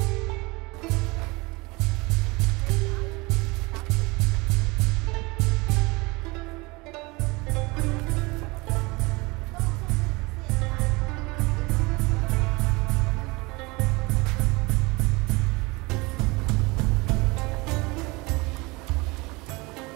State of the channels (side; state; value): left; quieter; 24.7 dB